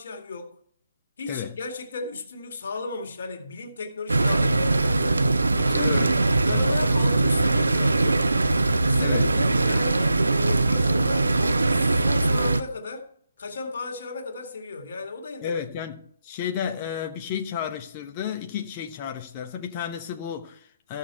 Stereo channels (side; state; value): both; inverted; correlation -0.88